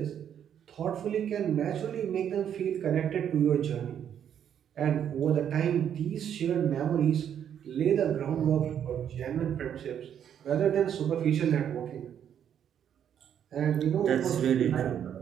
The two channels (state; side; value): quieter; left; 9.1 dB